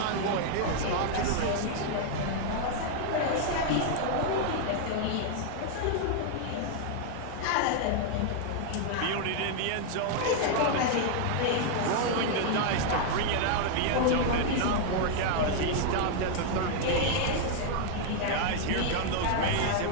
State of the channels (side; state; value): both; different; correlation 0.00